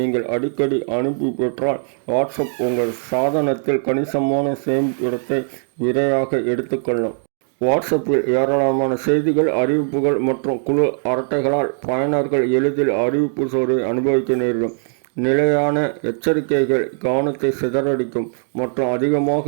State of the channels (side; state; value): left; silent; 65 dB below the other